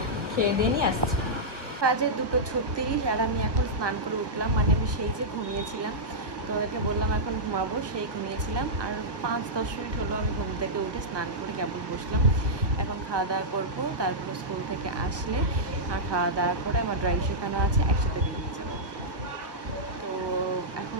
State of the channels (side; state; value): left; late; 1.1 ms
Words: খেয়ে দিয়ে নিয়ে আসছি। বাজে 2:36, আর আমি এখন স্নান করে উঠলাম। মানে আমি সেই যে ঘুমিয়েছিলাম, তো ওকে বললাম এখন ঘুমাবো, সেই ঘুমিয়েছিলাম। আর 5-10 মিনিট হলো আমি ঘুম থেকে উঠে স্নান করে কেবল বসলাম। এখন খাওয়া দাওয়া করবো, তারপরে স্কুল থেকে আসলে আর খাওয়া দাওয়া করে আমার ড্রয়িং শেখানো আছে, একসাথে বেরিয়ে যাবো। তো এখন